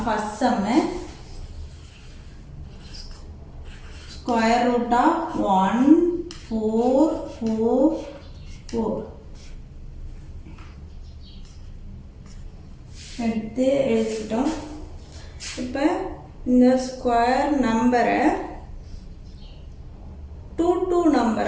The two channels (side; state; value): both; identical; correlation 1.00